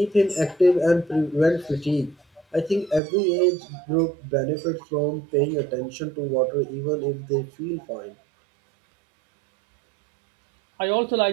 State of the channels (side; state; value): left; drops out; at 3.0 s